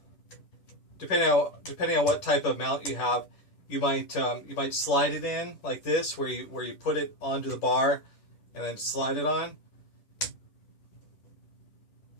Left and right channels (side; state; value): right; late; 10 ms